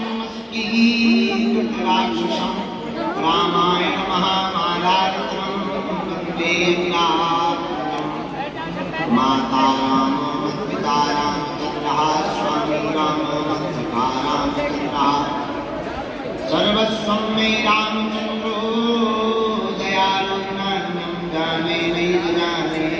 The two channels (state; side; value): identical; both; correlation 1.00